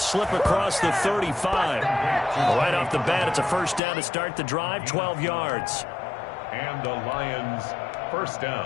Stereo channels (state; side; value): drops out; right; at 3.8 s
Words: across the 35. Right off the bat, it's a first down to start the drive, 12 yards. And the Lions' first